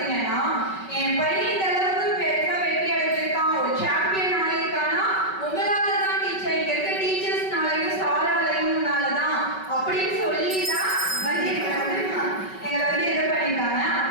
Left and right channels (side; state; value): right; late; 5.3 ms